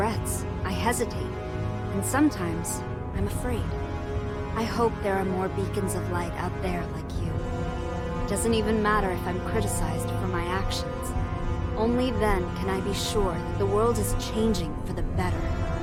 I hesitate, and sometimes I'm afraid. I hope there are more beacons of light out there like you. It doesn't even matter if I'm criticized for my actions. Only then can I be sure that the world is changing for the better.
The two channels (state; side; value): identical; both; correlation 1.00